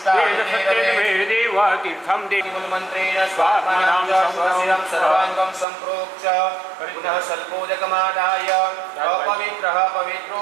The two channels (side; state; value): left; drops out; at 5.7 s